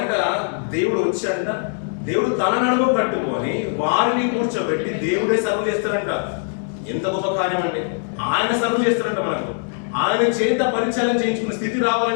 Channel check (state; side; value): silent; right; digital silence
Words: దేవుడు వచ్చాడంట. దేవుడు తన నడుము కట్టుకొని వారిని కూర్చోబెట్టి దేవుడే సర్వ్ చేస్తారంట. ఎంత గొప్ప కార్యం అండి! ఆయన సర్వ్ చేస్తారంట మనకు. ఆయన చేత పరిచారం చేయించుకునే స్థితి